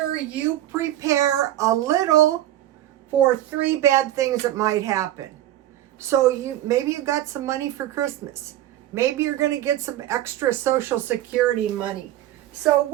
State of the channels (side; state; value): left; quieter; 13.5 dB